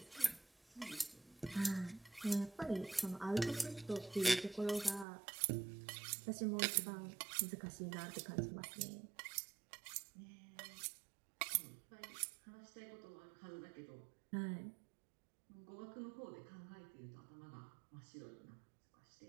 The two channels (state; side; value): drops out; left; at 5.1 s